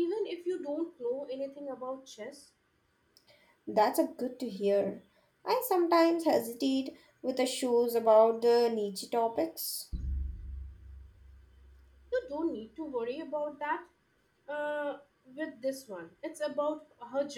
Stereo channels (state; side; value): identical; both; correlation 1.00